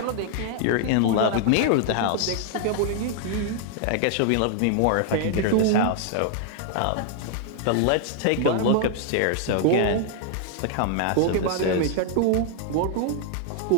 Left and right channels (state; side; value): different; both; correlation 0.00